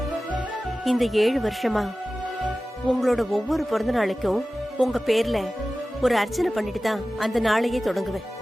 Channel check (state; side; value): normal; both; correlation 0.96